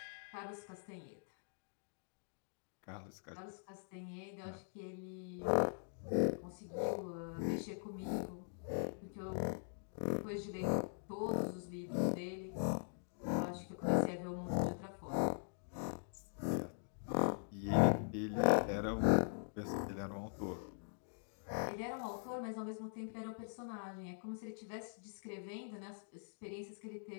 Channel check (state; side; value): silent; right; digital silence